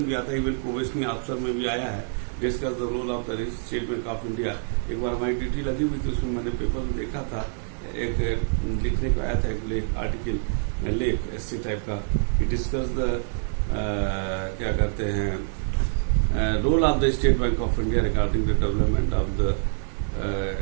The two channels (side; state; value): left; silent; digital silence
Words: भी आता है, इवन प्रोबेशनरी ऑफिसर में भी आया है, discuss the role of the State Bank of India. एक बार हमारी ड्यूटी लगी हुई थी, उसमें मैंने पेपर में देखा था, एक लिखने को आया था, एक लेख आर्टिकल लेख ऐसे टाइप का, डिस्कस द क्या कहते हैं role of the State Bank of India regarding the development of the